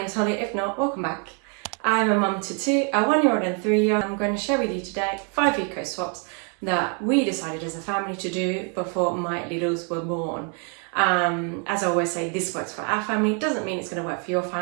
Holly, if not, welcome back. I'm a mum to two, a 1-year-old and 3-year-old. I'm going to share with you today 5 eco swaps that we decided as a family to do before my littles were born. As I always say, this works for our family, doesn't mean it's going to work for your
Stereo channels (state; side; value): quieter; left; 38.9 dB